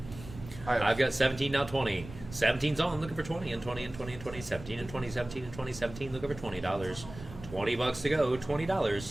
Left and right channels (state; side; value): noise; right; rumble, 14 dB below the sound